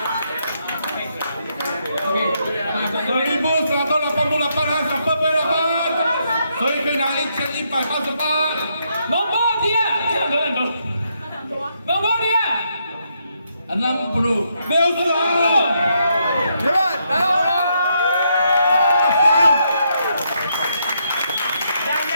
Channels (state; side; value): inverted; both; correlation -0.77